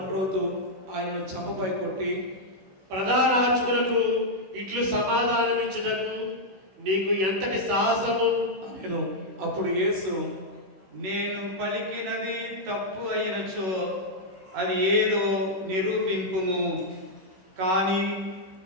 ఆయనను చంపపై కొట్టి, ప్రధానార్చకులకు ఇట్లు సమాధానమిచ్చుటకు నీకు ఎంతటి సాహసము అనెను. అప్పుడు యేసు, నేను పలికినది తప్పు అయినచో అది ఏదో నిరూపింపుము. కానీ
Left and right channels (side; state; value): left; late; 16 ms